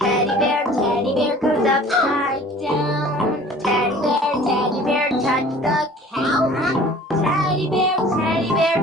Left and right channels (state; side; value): normal; both; correlation 0.48